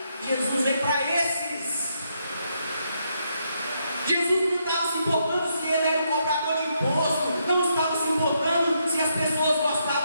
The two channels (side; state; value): both; inverted; correlation -0.78